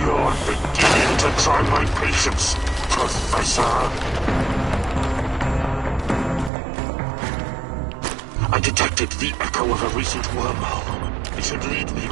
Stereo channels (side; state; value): left; drops out; at 6.5 s